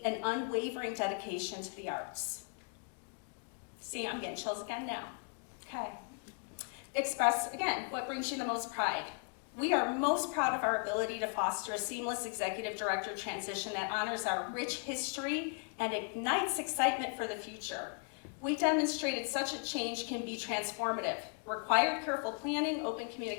and unwavering dedication to the arts. See, I'm getting chills again now. Okay. Express, again, what brings you the most pride. We are most proud of our ability to foster a seamless executive director transition that honors our rich history and ignites excitement for the future. We demonstrated such a change can be transformative, required careful planning, open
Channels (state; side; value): quieter; right; 39.6 dB